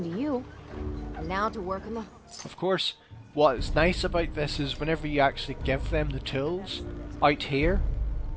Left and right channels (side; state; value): both; identical; correlation 1.00